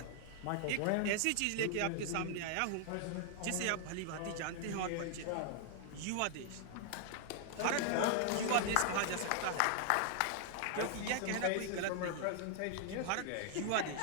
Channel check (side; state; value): both; different; correlation 0.00